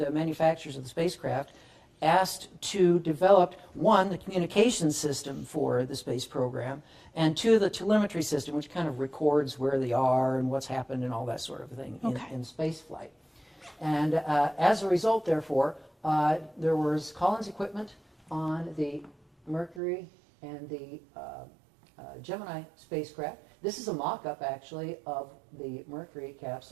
manufacturers of the spacecraft asked to develop, one, the communication system for the space program, and two, the telemetry system, which kind of records where they are and what's happened and all that sort of thing in space flight. And as a result, therefore, there was Collins equipment on the Mercury and the Gemini spacecraft. This is a mock-up, actually, of the Mercury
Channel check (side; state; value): left; drops out; at 19.8 s